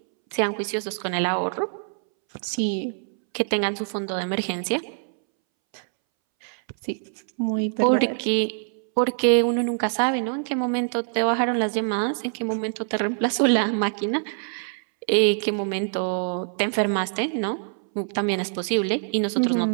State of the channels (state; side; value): silent; left; 62 dB below the other